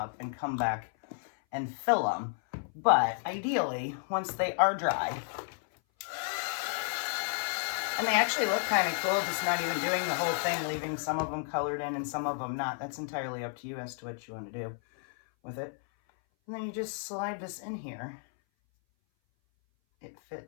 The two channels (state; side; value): silent; right; 56 dB below the other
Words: and come back and fill them. But ideally, once they are dry, and they actually look kind of cool, just not even doing the whole thing, leaving some of them colored in and some of them not. That's entirely up to you as to what you want to do with it. And then you just slide this in here. It